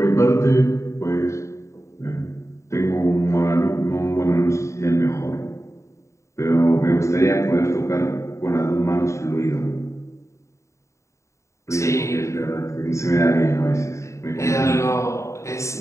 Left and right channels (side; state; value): right; late; 0.14 ms